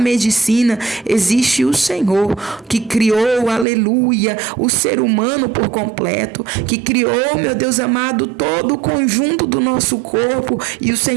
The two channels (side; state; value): left; drops out; at 3.7 s